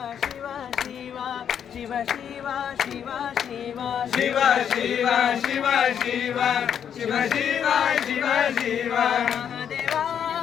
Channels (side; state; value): right; quieter; 8.5 dB